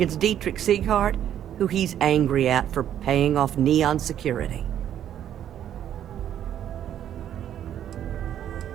Dietrich Sieghart, who he's angry at for paying off Neon security.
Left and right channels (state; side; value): quieter; left; 10.5 dB